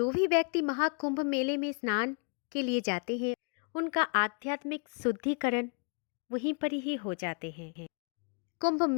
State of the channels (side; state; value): right; quieter; 38.1 dB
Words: भी व्यक्ति महाकुंभ मेले में स्नान के लिए जाते हैं उनका आध्यात्मिक शुद्धिकरण वहीं पर ही हो जाते हैं। कुंभ